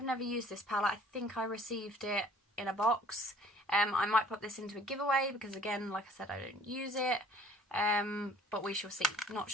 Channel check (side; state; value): both; normal; correlation 0.53